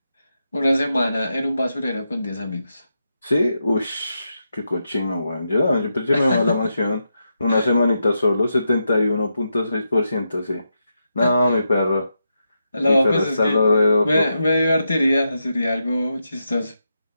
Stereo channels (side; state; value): both; inverted; correlation -0.85